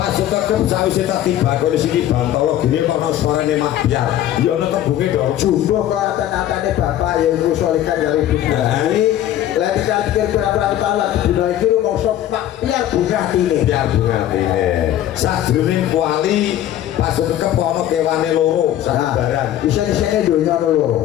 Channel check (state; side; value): quieter; right; 12.2 dB